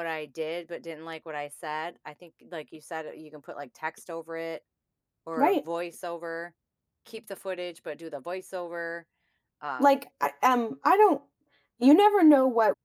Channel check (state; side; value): identical; both; correlation 1.00